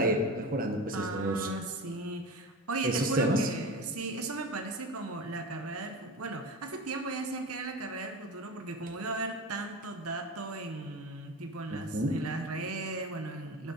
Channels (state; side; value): normal; both; correlation 0.28